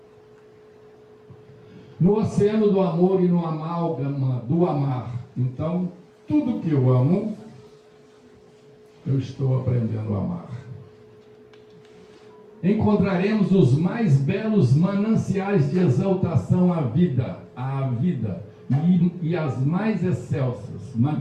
No oceano do amor e no amálgama do amar, então, tudo que eu amo, eu estou aprendendo a amar. Encontraremos os mais belos mananciais de exaltação à vida e as mais excelsas,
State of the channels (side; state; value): both; identical; correlation 1.00